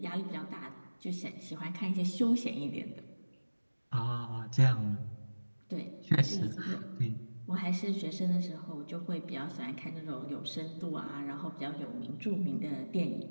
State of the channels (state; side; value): inverted; both; correlation -1.00